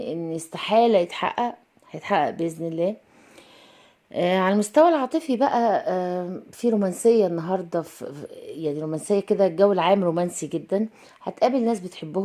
استحالة يتحقق، هيتحقق بإذن الله. على المستوى العاطفي بقى، في رومانسية النهاردة، يعني رومانسية كده، الجو العام رومانسي جدا. هتقابل ناس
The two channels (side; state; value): both; identical; correlation 1.00